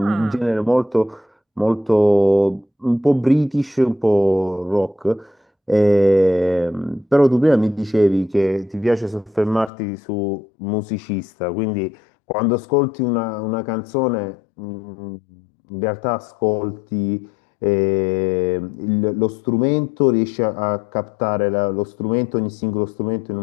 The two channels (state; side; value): drops out; right; at 9.7 s